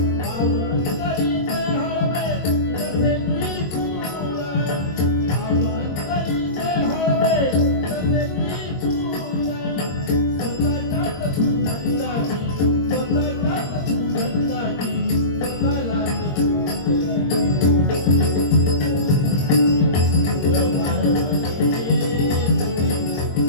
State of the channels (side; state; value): right; late; 22 ms